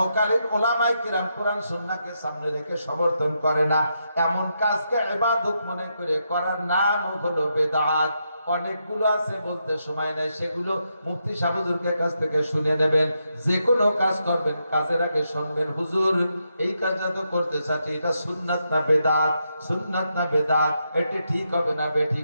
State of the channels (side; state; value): both; inverted; correlation -0.82